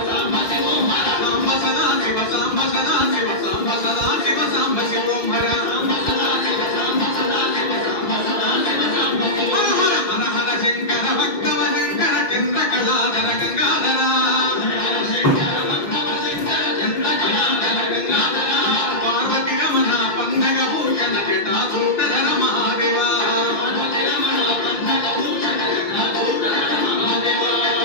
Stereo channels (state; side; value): late; right; 6.1 ms